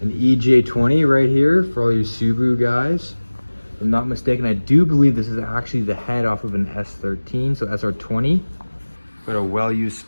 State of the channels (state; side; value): inverted; both; correlation -1.00